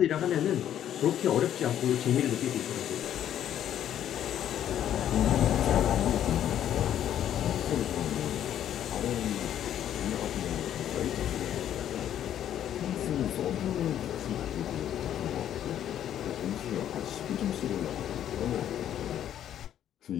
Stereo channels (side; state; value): right; quieter; 10.7 dB